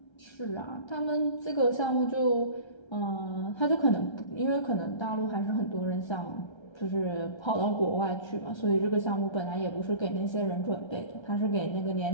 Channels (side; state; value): right; late; 1.3 ms